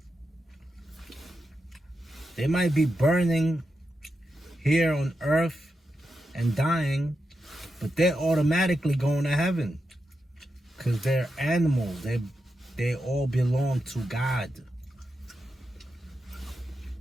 They might be burning here on earth and dying, but they're automatically going to heaven because they're animals. They all belong to God.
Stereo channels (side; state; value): both; normal; correlation 0.87